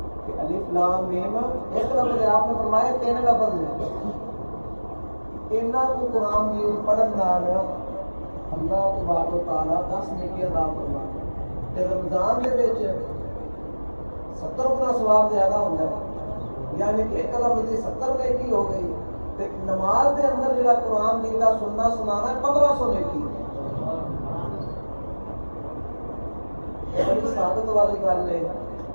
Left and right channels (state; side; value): inverted; both; correlation -1.00